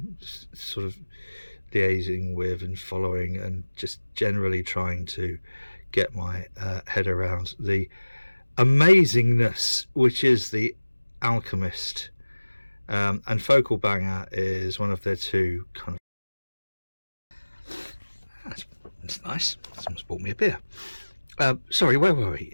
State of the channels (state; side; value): inverted; both; correlation -1.00